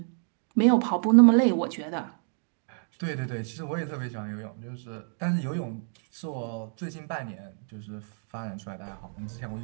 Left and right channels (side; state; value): left; silent; 59 dB below the other